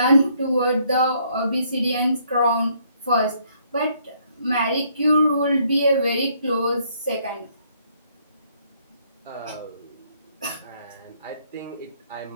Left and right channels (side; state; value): both; inverted; correlation -0.68